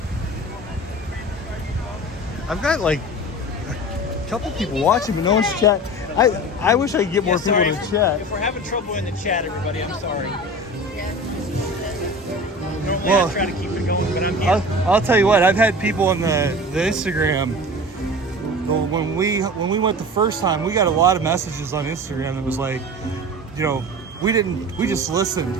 I've got like a couple people watching, but no one's chat. I wish I could get more people sorry, to chat. If we're having trouble in the chat, everybody, I'm sorry. Normally Well, I try to keep it going, but I'm here. I'll tell you what, I've had people on the Instagram. When we went the first time, we got a lot of messages on Instagram that was like, we just listened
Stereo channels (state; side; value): normal; both; correlation 0.35